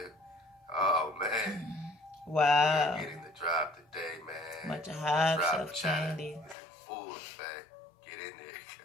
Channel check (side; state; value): right; drops out; at 6.6 s